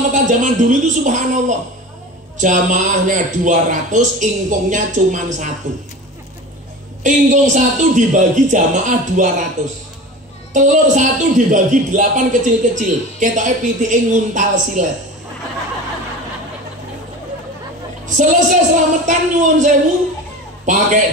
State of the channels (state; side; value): normal; both; correlation 0.34